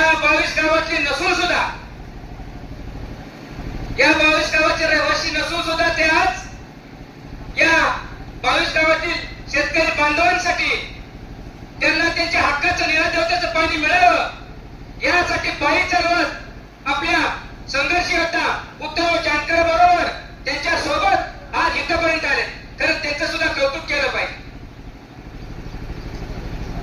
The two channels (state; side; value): identical; both; correlation 1.00